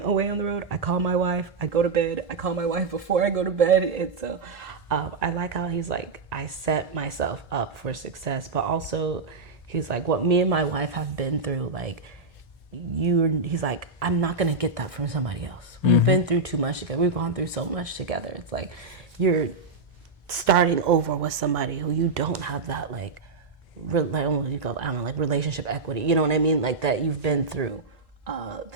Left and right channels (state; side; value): quieter; left; 3.9 dB